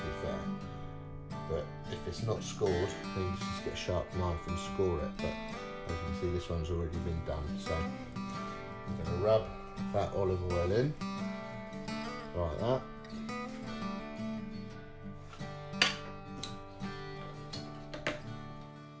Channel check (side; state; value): both; identical; correlation 1.00